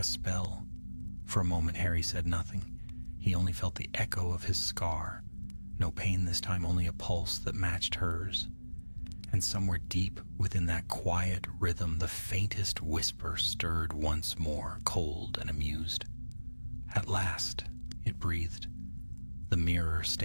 spell. For a moment, Harry said nothing. He only felt the echo of his scar. No pain this time, only a pulse that matched hers. And somewhere deep within that quiet rhythm, the faintest whisper stirred once more, cold and amused. "At last," it breathed, "the mirror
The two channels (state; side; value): inverted; both; correlation -1.00